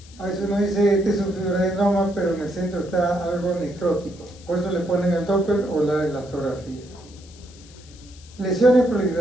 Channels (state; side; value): noise; left; hiss, 23 dB below the sound